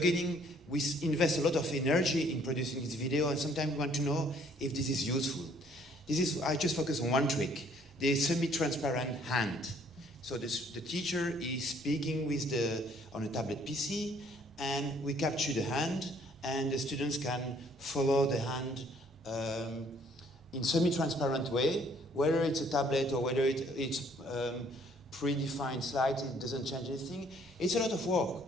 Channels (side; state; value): both; normal; correlation 0.61